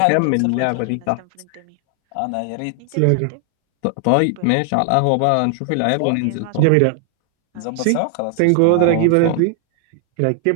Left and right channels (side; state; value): both; different; correlation 0.00